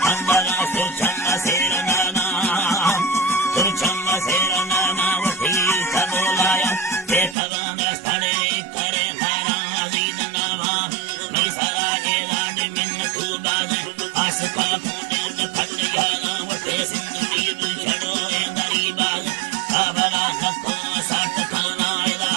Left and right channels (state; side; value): drops out; left; at 7.4 s